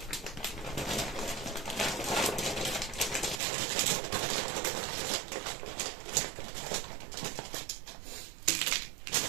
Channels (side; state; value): left; drops out; at 3.4 s